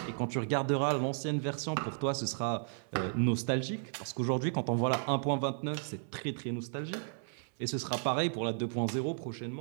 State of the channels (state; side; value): silent; left; 55 dB below the other